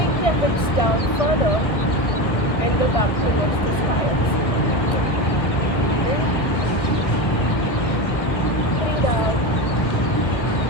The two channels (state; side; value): late; right; 1.4 ms